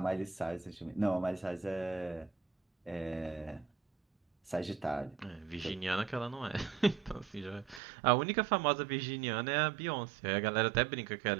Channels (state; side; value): drops out; left; at 7.8 s